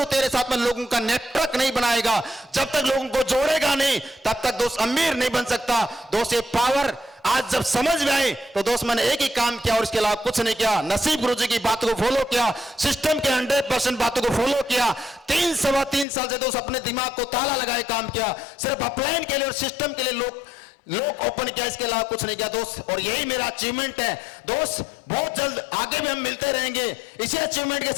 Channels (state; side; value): drops out; right; at 16.1 s